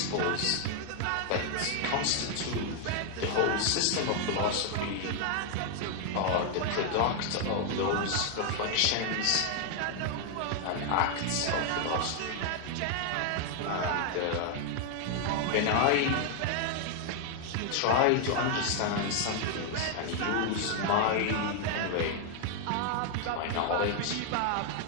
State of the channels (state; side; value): different; both; correlation 0.00